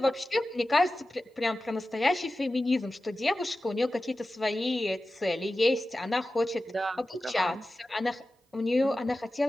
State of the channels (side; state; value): both; normal; correlation 0.94